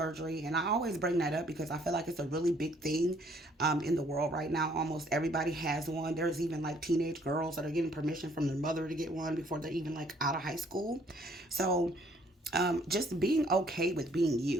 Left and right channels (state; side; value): normal; both; correlation 0.63